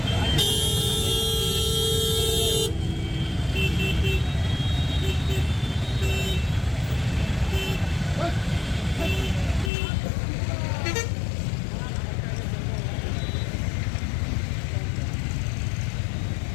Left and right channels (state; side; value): drops out; right; at 9.7 s